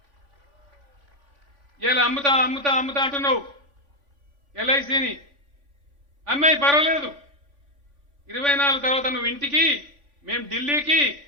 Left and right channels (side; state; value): left; late; 3.5 ms